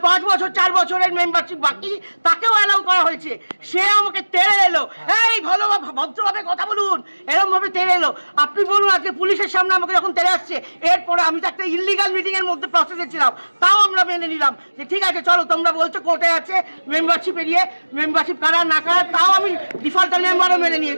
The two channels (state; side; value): inverted; both; correlation -1.00